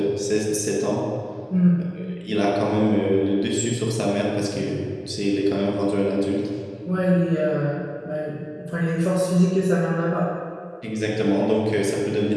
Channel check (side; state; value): both; identical; correlation 1.00